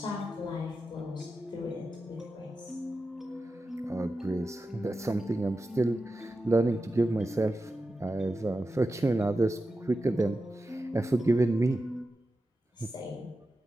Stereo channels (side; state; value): both; normal; correlation 0.91